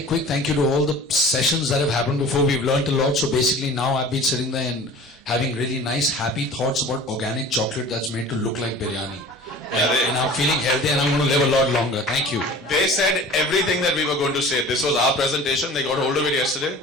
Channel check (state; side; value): normal; both; correlation 0.42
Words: quick thank you to all the sessions that have happened before. We've learned a lot. So basically now I've been sitting there and having really nice, happy thoughts about organic chocolate that's made to look like biryani. And I'm feeling healthy and I'm going to live a lot longer. Thank you. They said everything that we were going to say. This was our presentation. They got hold of it yesterday.